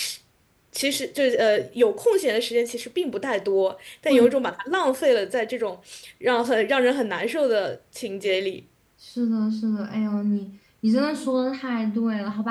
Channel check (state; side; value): identical; both; correlation 1.00